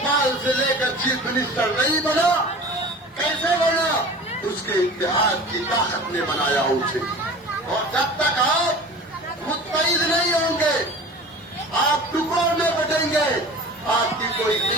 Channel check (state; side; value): normal; both; correlation 0.39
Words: سے لے کر چیف منسٹر نہیں بنا؟ کیسے بنا؟ اس کے اتحاد کی طاقت نے بنایا اسے. اور جب تک آپ متحد نہیں ہوں گے، آپ ٹکڑوں میں بٹیں گے، آپ کی کوئی